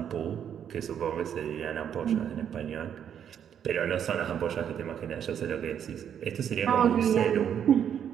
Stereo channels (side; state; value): left; quieter; 8.8 dB